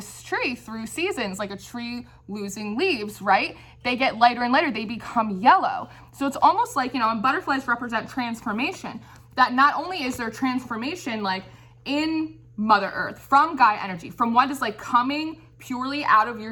tree through seasons, like a tree losing leaves, right? They get lighter and lighter, they become yellow. So it's almost like, and butterflies represent transformation, that not only is there transformation like in Mother Earth, from Gaia energy, from what is like coming purely out of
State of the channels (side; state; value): both; identical; correlation 1.00